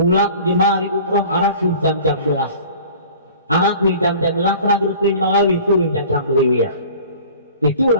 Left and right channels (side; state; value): both; inverted; correlation -0.45